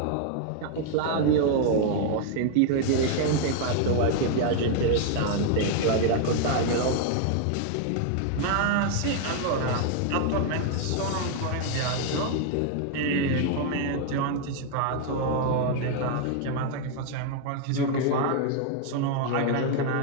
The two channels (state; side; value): different; both; correlation 0.00